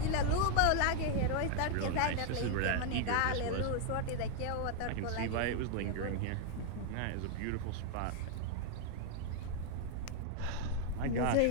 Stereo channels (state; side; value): different; both; correlation 0.00